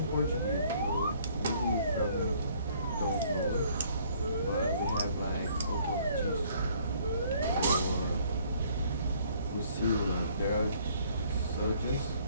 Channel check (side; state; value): both; inverted; correlation -0.61